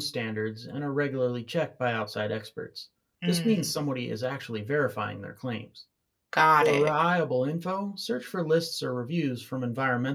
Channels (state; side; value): identical; both; correlation 1.00